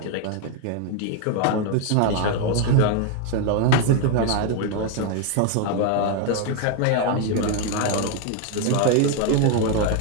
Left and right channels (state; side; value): different; both; correlation 0.01